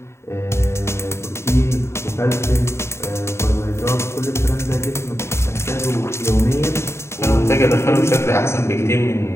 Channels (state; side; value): late; right; 0.13 ms